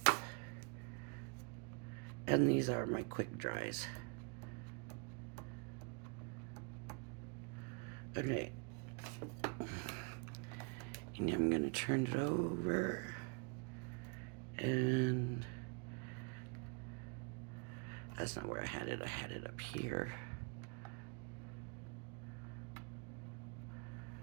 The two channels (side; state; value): left; quieter; 35.4 dB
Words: And these are my quick dries. Okay. And I'm going to turn it over. And that's not where I had it. I had it up here.